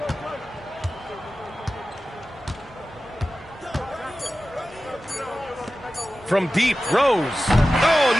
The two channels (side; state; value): both; normal; correlation 0.95